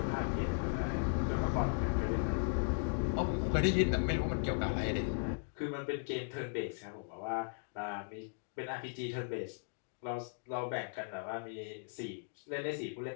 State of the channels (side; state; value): right; silent; digital silence